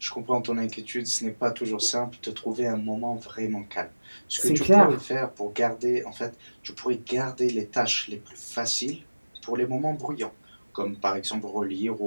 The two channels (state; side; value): inverted; both; correlation -1.00